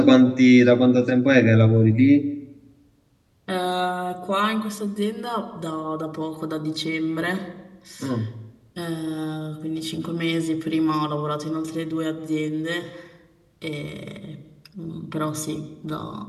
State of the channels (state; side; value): identical; both; correlation 1.00